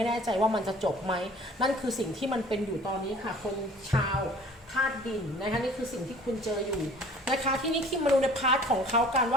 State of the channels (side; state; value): both; normal; correlation 0.49